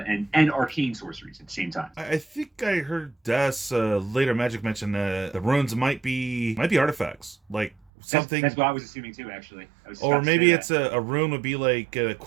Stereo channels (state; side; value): drops out; left; at 7.8 s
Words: arcane sorceries at the same time. I think I heard Des later Magic mention the runes might be artifacts, like something. That's what I was assuming too, actually. Or maybe it's a rune would be like